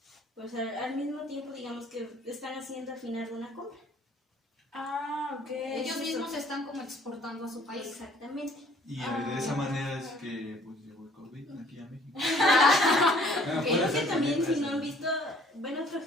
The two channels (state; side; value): normal; both; correlation 0.57